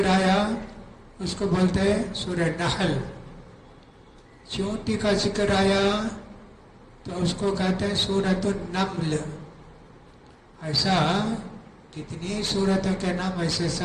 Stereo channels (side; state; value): both; identical; correlation 1.00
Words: آیا، اس کو بولتے ہیں سورہ نحل. چونٹی کا ذکر آیا تو اس کو کہتے ہیں سورۃ النمل. ایسا کتنی سورتوں کے نام ایسے